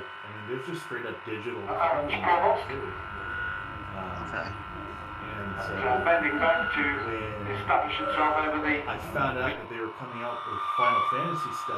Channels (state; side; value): identical; both; correlation 1.00